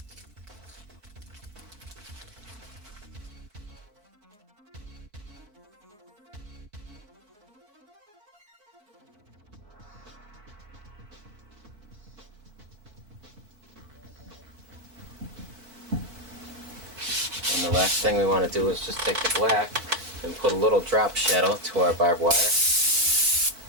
And the last thing we want to do is just take the black and put a little drop shadow to our barbed wire.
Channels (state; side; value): late; left; 4.7 ms